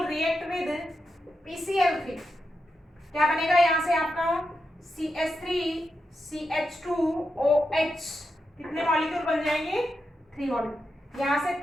react with PCl3। क्या बनेगा यहाँ से आपका CH3CH2OH, कितने मॉलिक्यूल बन जाएंगे? 3 मॉलिक्यूल। यहाँ से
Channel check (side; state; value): both; normal; correlation 0.87